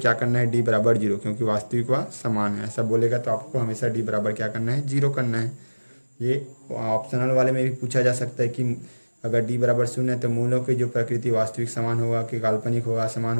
करना है, डी बराबर 0, क्योंकि वास्तविक व समान है। ऐसा बोलेगा तो आपको हमेशा डी बराबर क्या करना है, 0 करना है। ये ऑप्शनल वाले में भी पूछा जा सकता है कि अगर डी बराबर 0 है तो मूलों की जो प्रकृति वास्तविक समान होगा कि काल्पनिक होगा, समान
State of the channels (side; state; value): both; inverted; correlation -1.00